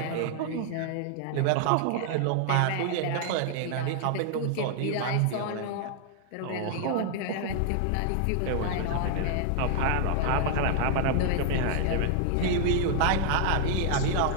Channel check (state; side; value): different; both; correlation 0.00